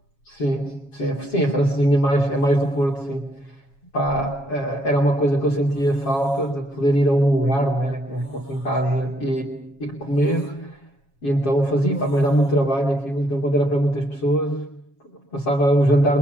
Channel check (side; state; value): right; late; 7.3 ms